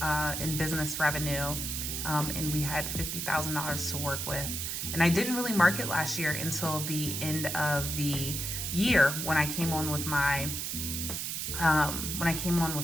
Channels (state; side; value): noise; right; hiss, 3 dB below the sound